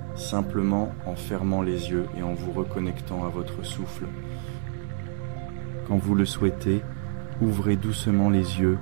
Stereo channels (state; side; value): silent; left; digital silence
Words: simplement en fermant les yeux et en vous reconnectant à votre souffle. Quand vous le souhaitez, ouvrez doucement les yeux